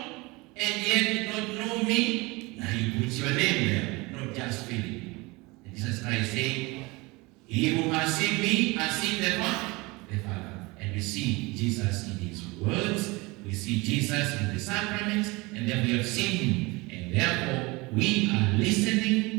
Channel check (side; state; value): left; quieter; 24.2 dB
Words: and yet did not know me? Now He puts your name there, not just Philip. And Jesus Christ saying, He who has seen me has seen the Father. And we see Jesus in His words, we see Jesus in the sacraments, and then we have seen Him. And therefore, we are